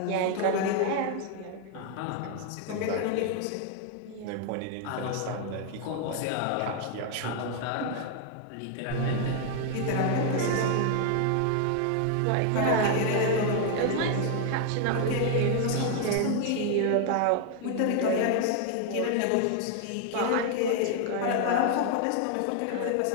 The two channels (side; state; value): both; different; correlation 0.00